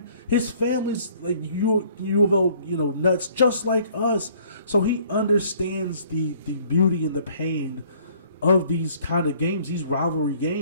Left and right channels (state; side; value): inverted; both; correlation -0.58